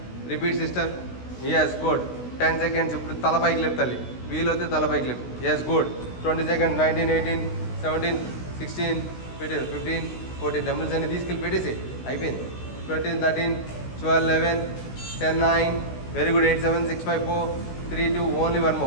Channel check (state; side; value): late; right; 16 ms